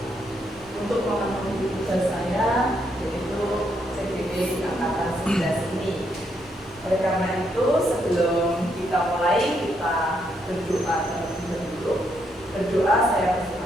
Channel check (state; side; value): normal; both; correlation 0.76